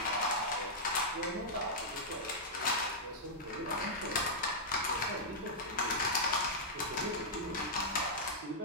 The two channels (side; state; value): both; normal; correlation -0.08